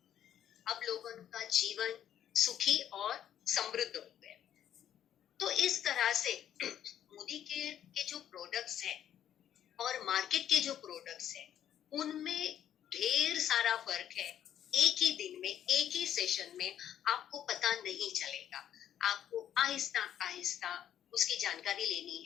अब लोगों का जीवन सुखी और समृद्ध हो गया। तो इस तरह से मोदी के जो प्रोडक्ट्स हैं और मार्केट के जो प्रोडक्ट्स हैं उनमें ढेर सारा फर्क है। एक ही दिन में, एक ही सेशन में आपको पता नहीं चलेगा। आपको आहिस्ता आहिस्ता उसकी जानकारी लेनी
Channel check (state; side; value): quieter; right; 10.3 dB